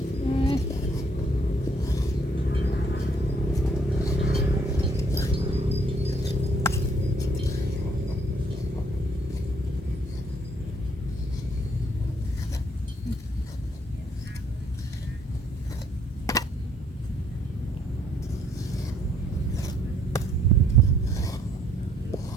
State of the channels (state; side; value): normal; both; correlation 0.65